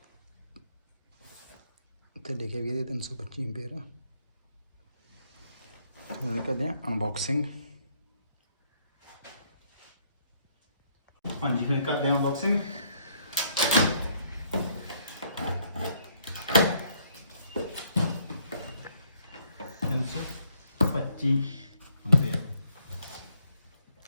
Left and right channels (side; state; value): both; inverted; correlation -0.69